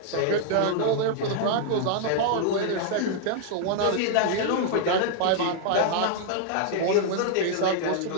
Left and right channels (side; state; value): both; different; correlation 0.00